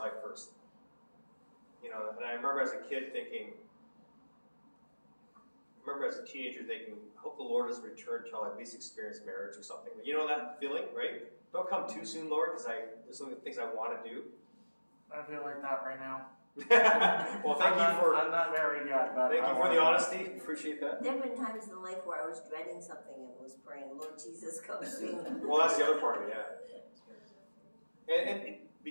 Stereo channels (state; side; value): inverted; both; correlation -1.00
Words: first. You know, and I remember as a kid thinking, as a teenager thinking, I hope the Lord doesn't return until I at least experience marriage or something. You know that feeling, right? Don't come too soon, Lord, because there's some things I want to do. I feel like that right now. Well, I'm not married yet, but thank I you for want the to. honesty. Appreciate that. There have been times in life where I was dreading something and was praying, Lord Jesus, come soon. Well, that's the other part of it, yeah. And